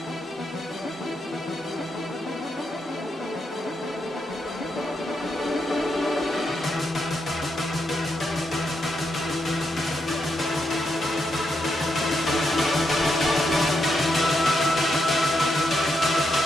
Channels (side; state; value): both; normal; correlation 0.81